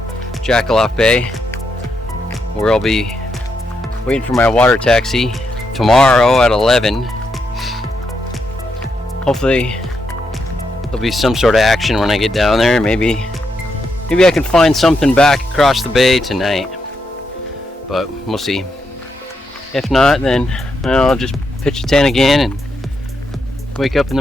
Jackaloff Bay, where I'll be waiting for my water taxi tomorrow at 11. Hopefully there'll be some sort of action when I get down there. Maybe I can find something back across the bay tonight, but we'll see. If not, then I'll just pitch a tent again and wake up in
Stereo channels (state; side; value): normal; both; correlation 0.81